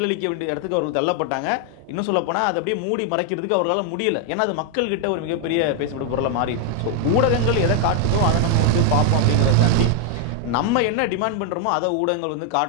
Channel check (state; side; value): different; both; correlation 0.00